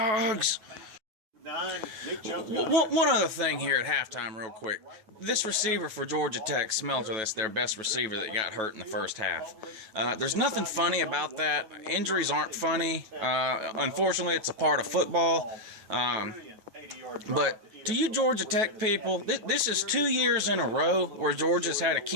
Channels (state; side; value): late; left; 9.3 ms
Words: One other thing here at halftime real quick. This receiver for Georgia Tech, Smelter, that's their best receiver that got hurt in the first half. There's nothing funny about that. Injuries aren't funny. Unfortunately, it's a part of football. But to you Georgia Tech people, this is 2 years in a row where Georgia's had a